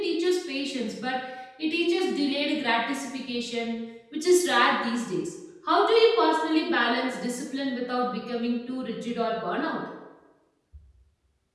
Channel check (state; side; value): identical; both; correlation 1.00